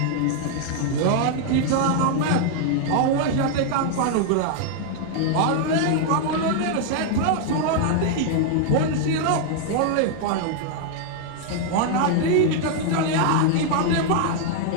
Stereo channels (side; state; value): both; different; correlation 0.00